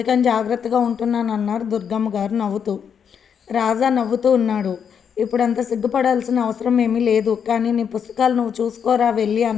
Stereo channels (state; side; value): quieter; right; 7.4 dB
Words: జాగ్రత్తగా ఉంటున్నాను అన్నారు దుర్గమ్మ గారు నవ్వుతూ. రాజా నవ్వుతూ ఉన్నాడు. ఇప్పుడంత సిగ్గుపడాల్సిన అవసరం ఏమీ లేదు, కానీ నీ పుస్తకాలు నువ్వు చూసుకోరా వెళ్ళి